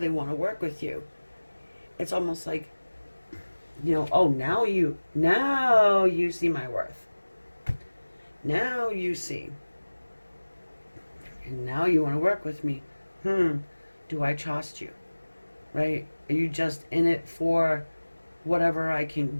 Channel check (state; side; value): inverted; both; correlation -1.00